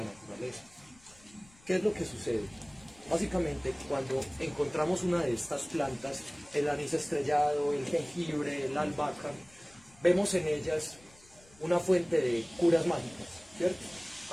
naturaleza. ¿Qué es lo que sucede? Básicamente, cuando encontramos una de estas plantas, el anís estrellado, el jengibre, la albahaca, vemos en ellas una fuente de curas mágicas, ¿cierto?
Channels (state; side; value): noise; left; rumble, 27 dB below the sound